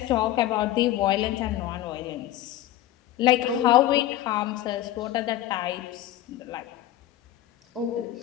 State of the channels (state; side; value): quieter; right; 13.6 dB